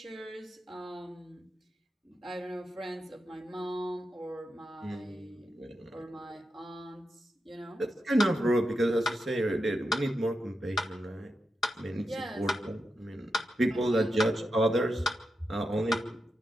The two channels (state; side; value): normal; both; correlation 0.87